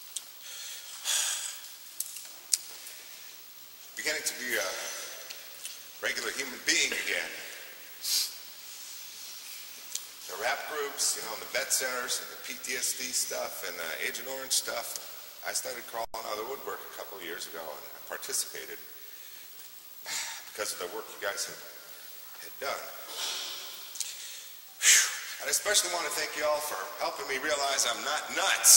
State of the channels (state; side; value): identical; both; correlation 1.00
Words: beginning to be a regular human being again. The rap groups, and the vet centers, and the PTSD stuff, and the Agent Orange stuff. I started crawling out of the woodwork a couple of years ago, and I participated because of the work you guys had done. I especially want to thank you all for helping me realize I'm not